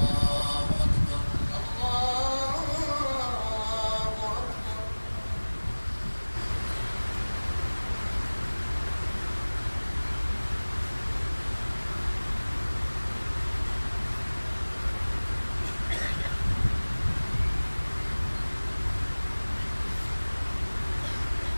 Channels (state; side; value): inverted; both; correlation -1.00